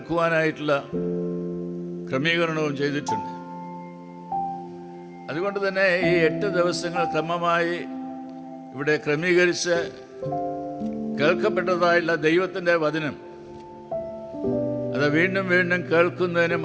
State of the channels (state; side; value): identical; both; correlation 1.00